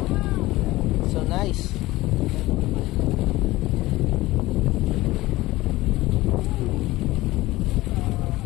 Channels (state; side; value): quieter; right; 18.4 dB